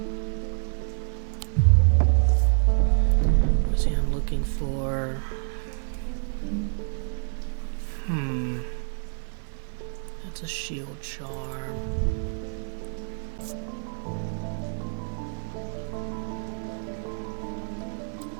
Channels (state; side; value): silent; left; 60 dB below the other